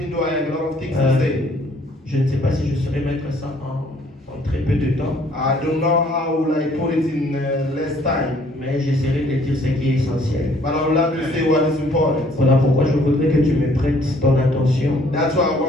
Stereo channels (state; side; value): normal; both; correlation 0.61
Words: though I have a lot of things Euh, to say. Je ne sais pas si je saurais mettre ça en très peu de temps, I don't know how will I put it in less time, mais j'essaierai de dire ce qui est essentiel. but I would love to say what is important. Voilà pourquoi je voudrais que tu me prêtes ton attention. That's why I